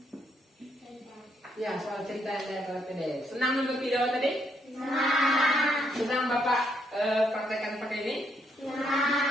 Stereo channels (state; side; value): normal; both; correlation 0.74